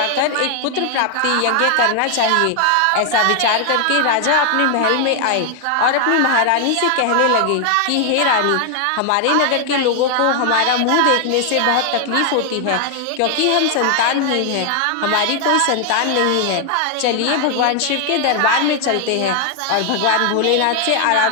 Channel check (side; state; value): both; different; correlation 0.00